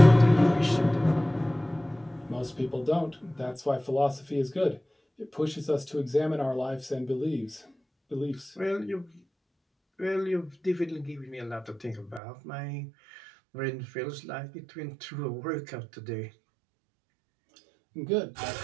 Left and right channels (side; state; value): left; drops out; at 12.2 s